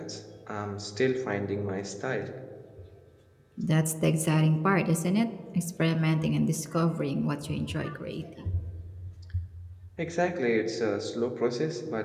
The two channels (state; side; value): identical; both; correlation 1.00